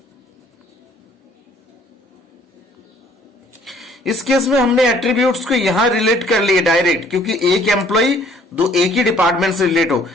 इस केस में हमने एट्रीब्यूट्स को यहां रिलेट कर लिए डायरेक्ट, क्योंकि एक एम्प्लॉय दो एक ही डिपार्टमेंट से रिलेट हो,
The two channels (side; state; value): both; normal; correlation 0.59